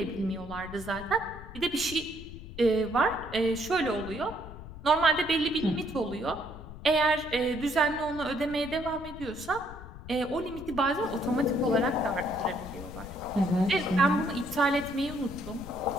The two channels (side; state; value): left; noise; rumble, 14 dB below the sound